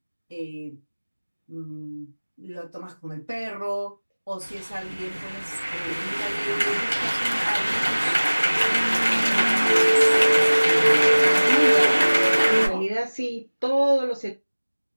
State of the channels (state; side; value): inverted; both; correlation -1.00